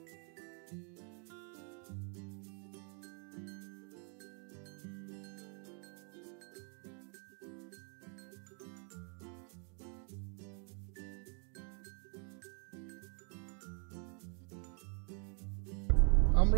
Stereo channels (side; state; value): left; quieter; 39.5 dB